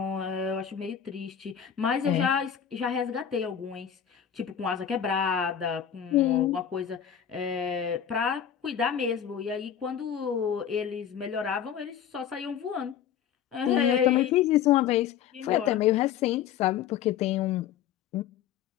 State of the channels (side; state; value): right; quieter; 9.0 dB